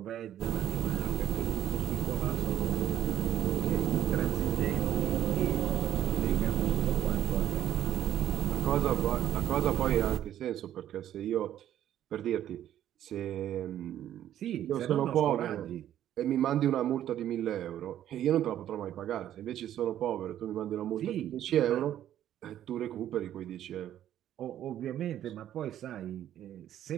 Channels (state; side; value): quieter; left; 11.5 dB